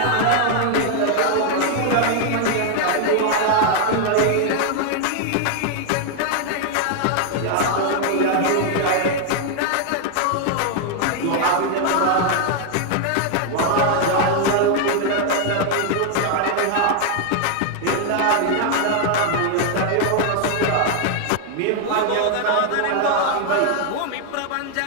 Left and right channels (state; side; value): different; both; correlation 0.00